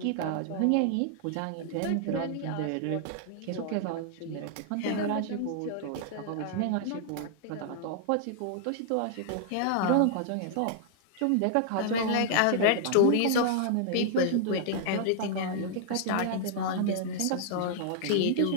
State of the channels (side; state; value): both; different; correlation -0.01